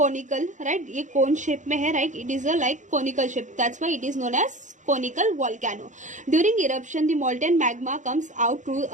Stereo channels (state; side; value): late; left; 0.36 ms